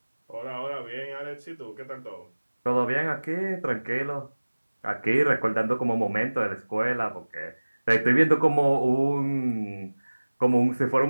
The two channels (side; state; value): both; inverted; correlation -1.00